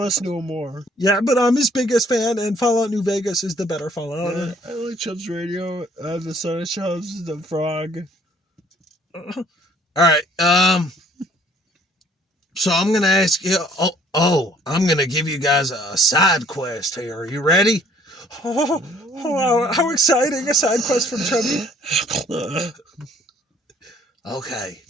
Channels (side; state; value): both; normal; correlation 0.59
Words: to him more. Yeah, but I'm his biggest fan, and Fallout New Vegas is the better Fallout. Yeah, I like Chubbs Radio, the Son of Chubbs, the Frog. All right, so I'm going to ask you... I'm going to give you guys a side quest here. Are you ready? How exciting, a side quest from Chubby. Okay,